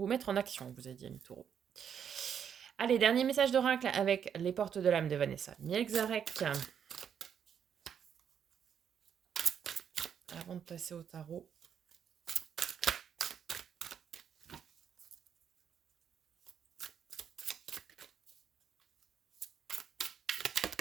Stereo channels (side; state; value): left; quieter; 8.1 dB